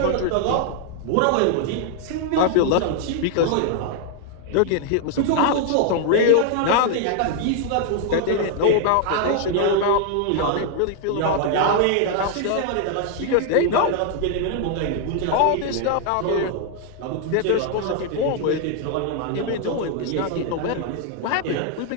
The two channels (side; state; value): both; different; correlation 0.00